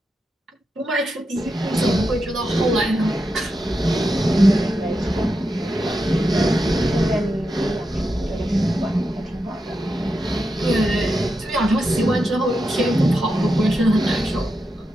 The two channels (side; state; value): both; normal; correlation 0.87